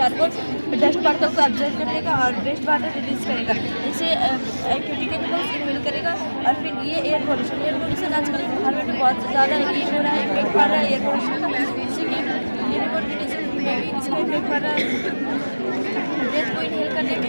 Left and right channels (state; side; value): inverted; both; correlation -1.00